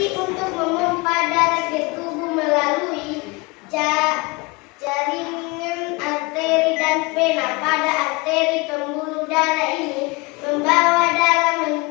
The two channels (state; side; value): quieter; right; 26.1 dB